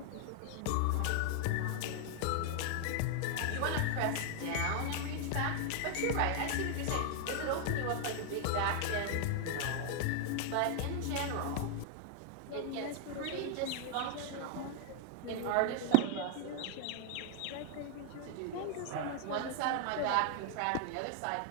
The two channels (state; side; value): different; both; correlation 0.00